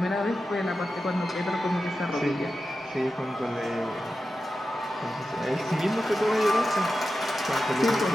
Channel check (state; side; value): normal; both; correlation 0.92